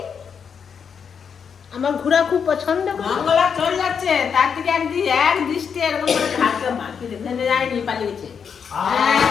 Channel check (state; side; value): quieter; right; 6.8 dB